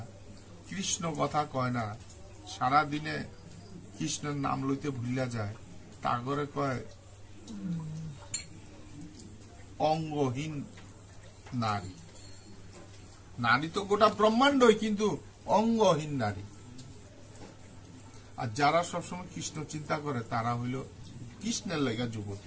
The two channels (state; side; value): identical; both; correlation 1.00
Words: কৃষ্ণ কথা কয় না, সারা দিনে কৃষ্ণের নাম লইতে ভুলিয়া যায়, তাগরে কয় অঙ্গহীন নারী। নারী তো গোটা ব্রহ্মাণ্ডই, কিন্তু অঙ্গহীন নারী। আর যারা সবসময় কৃষ্ণ চিন্তা করে তারা হইল কৃষ্ণের লেগা